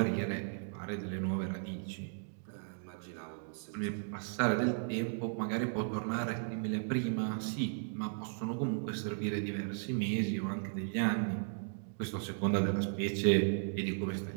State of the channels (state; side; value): silent; left; digital silence